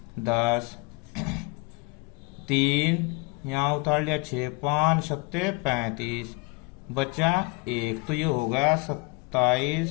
10, 3 यहाँ उतार लिया 6, 5 सत्ते 35 बचा 1, तो ये हो गया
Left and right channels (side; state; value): right; quieter; 27.2 dB